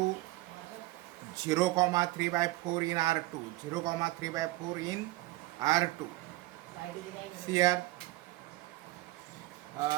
0,3/4 in R2. 0,3/4 in R2. Here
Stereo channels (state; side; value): quieter; left; 19.3 dB